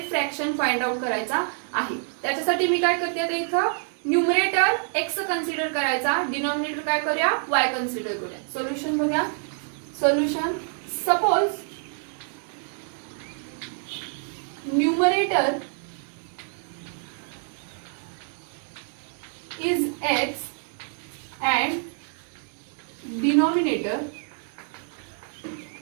फ्रॅक्शन फाइंड आउट करायचा आहे. त्याच्यासाठी मी काय करते आता इथं न्यूमरेटर x कन्सिडर करायचा, डिनॉमिनेटर काय करूया y कन्सिडर करूया. सोल्युशन बघा, solution suppose numerator is x and denominator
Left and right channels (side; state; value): left; silent; 58 dB below the other